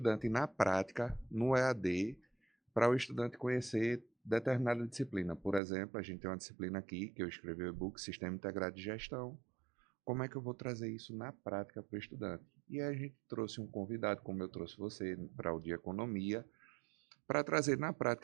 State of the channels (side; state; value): left; drops out; at 5.6 s